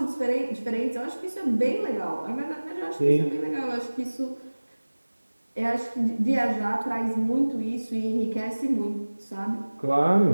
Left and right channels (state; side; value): inverted; both; correlation -1.00